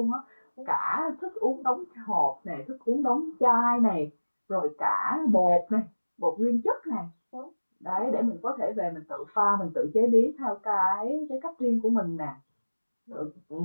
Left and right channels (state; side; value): inverted; both; correlation -1.00